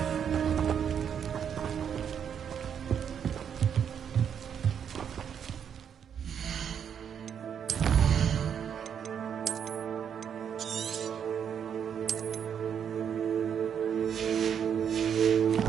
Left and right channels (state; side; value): quieter; left; 8.1 dB